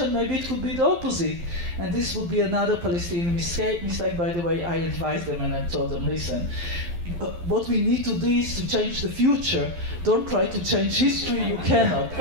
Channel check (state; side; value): late; left; 12 ms